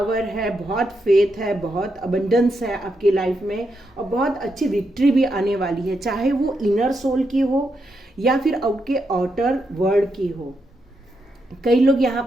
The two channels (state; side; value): normal; both; correlation 0.82